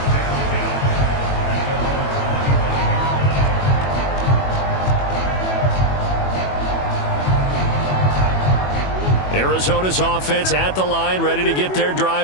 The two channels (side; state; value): right; late; 21 ms